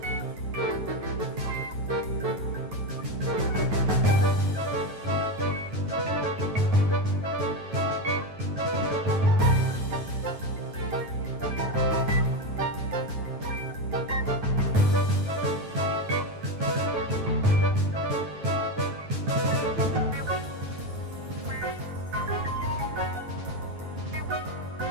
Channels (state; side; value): late; left; 9.3 ms